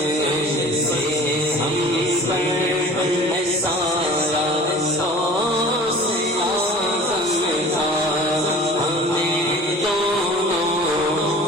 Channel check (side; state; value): both; normal; correlation 0.43